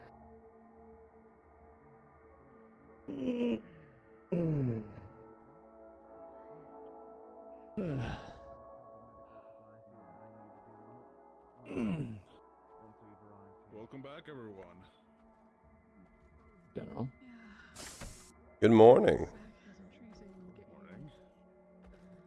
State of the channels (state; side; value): identical; both; correlation 1.00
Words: Welcome back, everyone. General. Good morning. Morning.